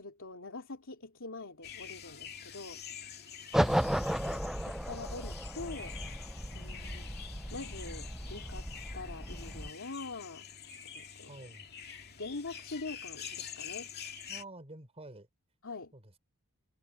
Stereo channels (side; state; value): both; normal; correlation 0.73